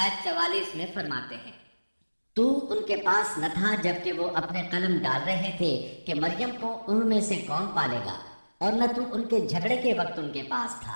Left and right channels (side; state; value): both; inverted; correlation -1.00